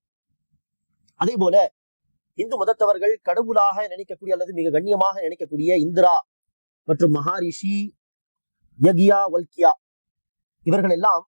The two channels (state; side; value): inverted; both; correlation -1.00